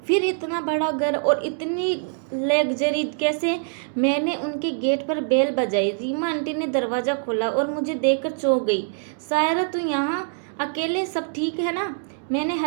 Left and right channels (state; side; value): silent; left; digital silence